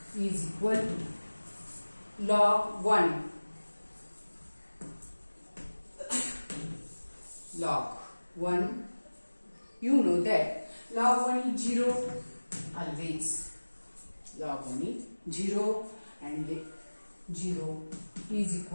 is equal to log 1. Log 1, you know that log 1 is 0 always. Log 1 is 0 and 0 is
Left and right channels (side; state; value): both; inverted; correlation -1.00